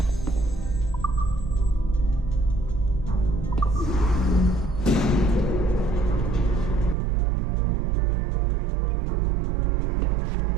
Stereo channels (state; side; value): drops out; left; at 7.0 s